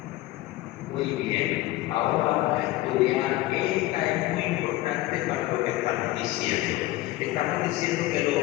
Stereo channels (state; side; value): quieter; right; 17.3 dB